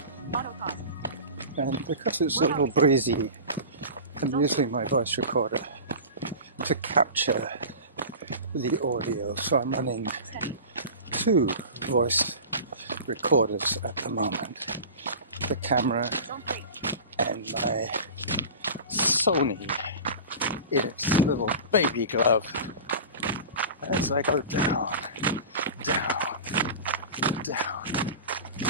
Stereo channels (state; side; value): inverted; both; correlation -0.33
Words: and because it's a little breezy, I'm using my voice recorder to capture the audio. So I'm running 2 voice recorders at the moment, the camera and my Sony in its little baby glove, as I go down, down, down.